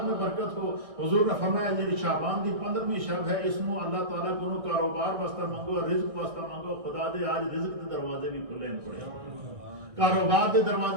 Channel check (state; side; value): late; left; 1.6 ms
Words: میں برکت ہو، حضور نے فرمایا یہ شعبان دی 15ویں شب ہے، اس میں اللہ تعالیٰ کو کاروبار واسطہ مانگو، رزق واسطہ مانگو، خدا دے آج رزق کے دروازے بھی کھلے ہیں، تھوڑے کاروبار دے